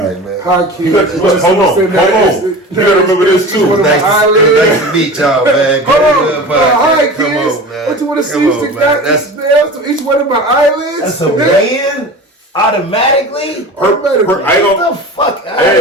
Hi, kids. Hold on. You gotta remember this too. Nice to meet y'all, man. Hold on. Hi, kids. What you want to see? That's each one of my eyelids. That's a man. Automatically? I don't. Get the fuck out of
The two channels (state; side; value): normal; both; correlation 0.34